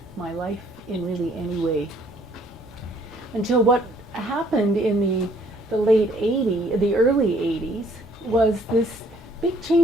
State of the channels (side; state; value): both; normal; correlation 0.62